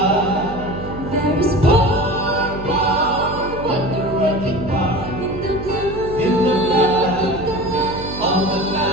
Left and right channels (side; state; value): right; noise; hum, 10 dB below the sound